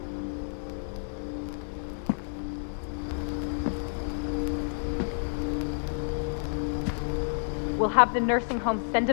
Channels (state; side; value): silent; right; 56 dB below the other